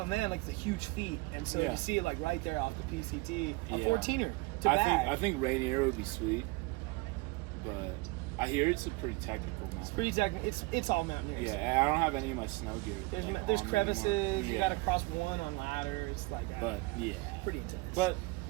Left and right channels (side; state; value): left; quieter; 23.9 dB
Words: man, like it's a huge feat. And so Yeah. to see it like right there off the PCT, a Yeah. 14er to bag. I think Rainier would be sweet, but I hear it's a pretty technical mountain. It's pretty technical. It's all mountaineers. Yeah, and I don't have any of my snow gear. There's like, there's on me crevices. anymore. You Yeah. got to cross one on ladders. Like that. But yeah, Pretty intense. but